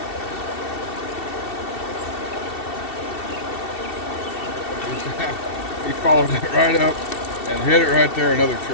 He followed it right up and hit it right there, another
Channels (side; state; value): right; late; 2.7 ms